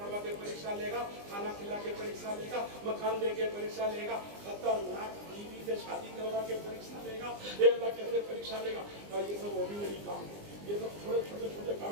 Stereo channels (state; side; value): late; left; 20 ms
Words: के परीक्षा लेगा, खाना खिला के परीक्षा लेगा, मकान दे के परीक्षा लेगा, खतरनाक बीवी से शादी करवा के परीक्षा लेगा। ये अल्लाह कैसे परीक्षा लेगा? और ये सब ऑर्डिनरी काम है, ये सब थोड़े छोटे छोटे